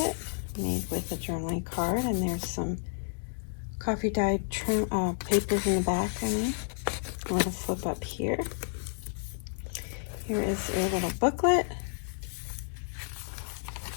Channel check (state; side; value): silent; right; digital silence